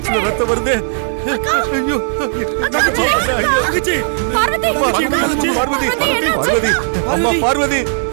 ரத்தம் வருது ஐயோ தங்கச்சி தங்கச்சி பார்வதி பார்வதி பார்வதி அம்மா பார்வதி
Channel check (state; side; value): silent; left; digital silence